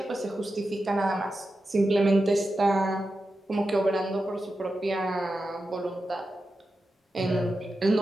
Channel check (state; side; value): normal; both; correlation 0.90